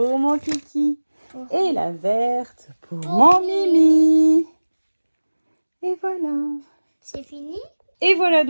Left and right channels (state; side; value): inverted; both; correlation -1.00